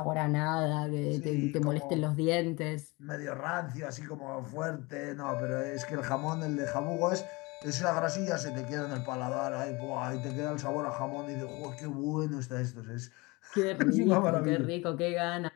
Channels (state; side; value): quieter; right; 24.8 dB